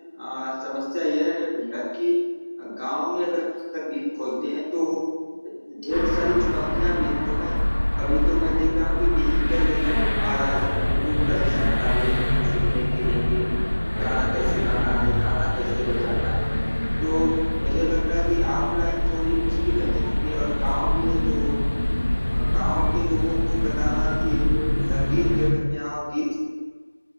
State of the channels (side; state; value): both; inverted; correlation -1.00